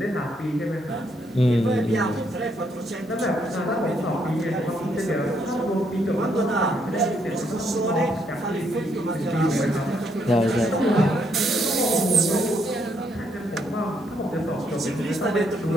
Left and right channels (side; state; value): both; normal; correlation 0.73